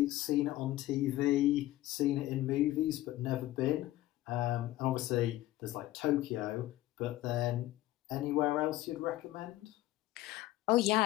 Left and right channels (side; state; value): right; quieter; 15.7 dB